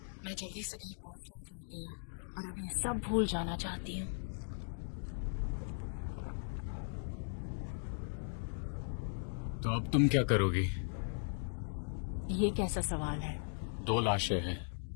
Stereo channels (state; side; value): silent; right; digital silence